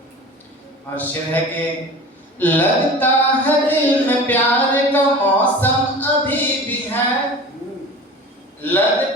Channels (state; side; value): normal; both; correlation 0.37